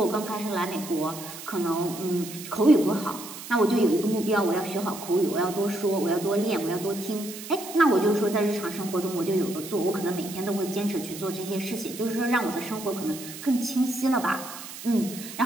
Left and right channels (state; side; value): noise; right; hiss, 12 dB below the sound